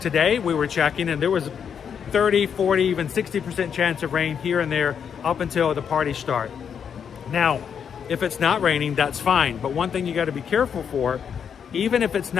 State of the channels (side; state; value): right; quieter; 7.5 dB